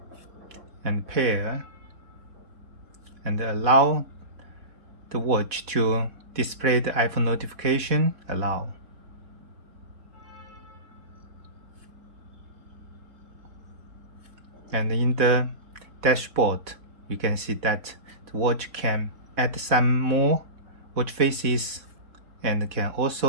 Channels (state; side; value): late; left; 4.1 ms